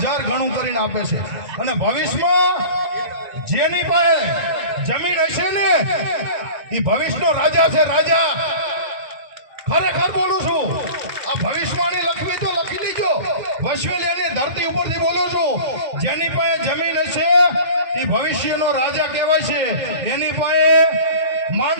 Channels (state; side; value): late; left; 2.1 ms